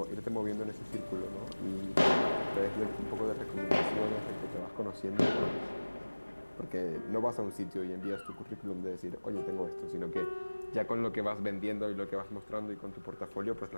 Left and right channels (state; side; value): inverted; both; correlation -1.00